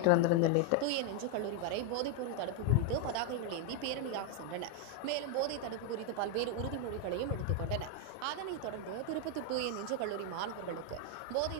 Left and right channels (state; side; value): different; both; correlation 0.01